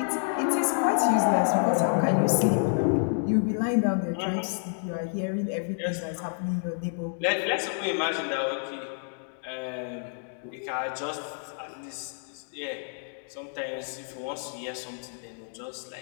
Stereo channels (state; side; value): silent; right; digital silence